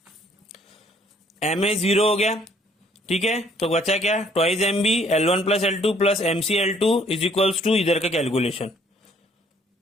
MA 0 हो गया, ठीक है। तो बचा क्या? Twice MB L1 plus L2 plus MCL2 is equals to इधर का कैलकुलेशन।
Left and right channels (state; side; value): normal; both; correlation 0.62